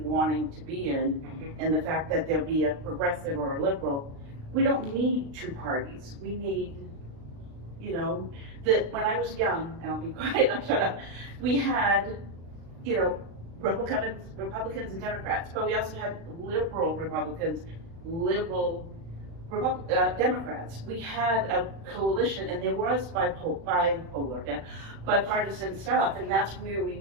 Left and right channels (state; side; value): late; left; 36 ms